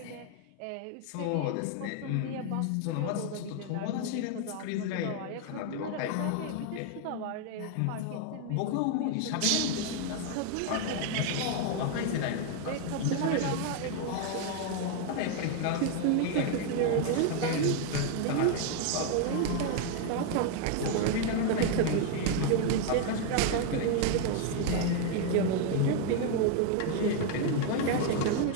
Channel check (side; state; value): both; different; correlation 0.01